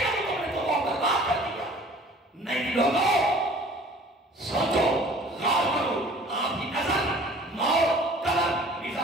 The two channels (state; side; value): normal; both; correlation 0.49